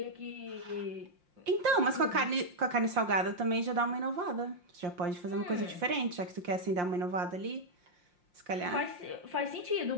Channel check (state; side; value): late; left; 5.7 ms